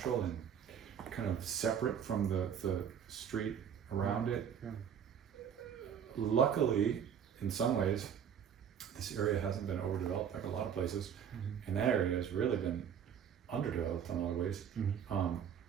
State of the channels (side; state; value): left; quieter; 8.2 dB